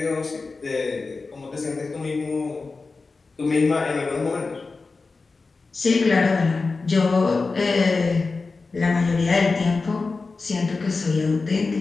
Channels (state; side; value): quieter; right; 4.0 dB